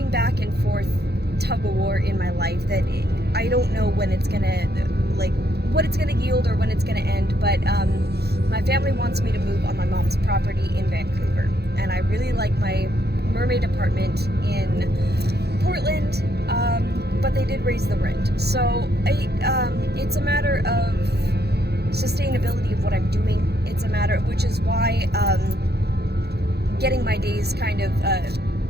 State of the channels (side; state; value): left; late; 0.47 ms